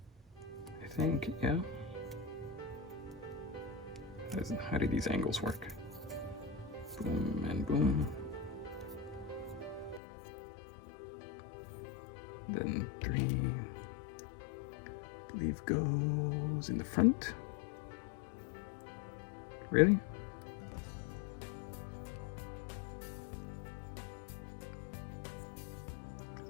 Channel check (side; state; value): right; drops out; at 10.0 s